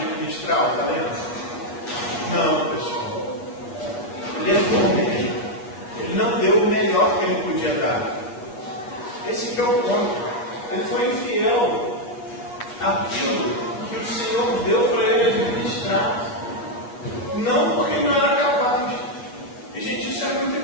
o talento? Não, pessoal. Ele é bom mesmo. Ele não deu o melhor que ele podia dar. Esse que é o ponto. Ele foi infiel àquilo que o Senhor deu para ele administrar. Não porque não era capaz. E, gente, isso é muito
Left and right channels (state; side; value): late; right; 8.1 ms